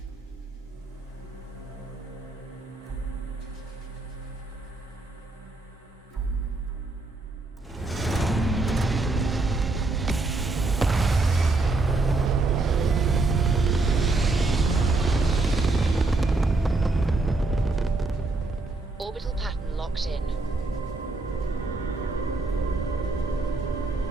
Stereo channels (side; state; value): left; quieter; 3.3 dB